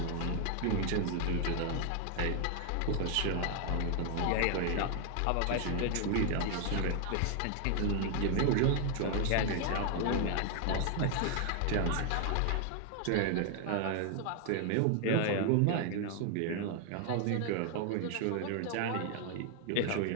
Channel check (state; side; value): different; both; correlation 0.00